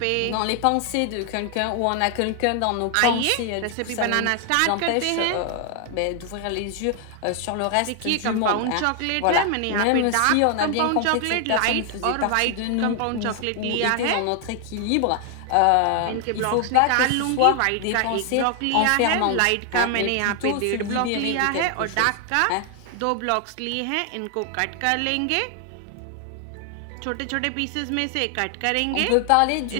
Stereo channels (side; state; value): both; different; correlation 0.00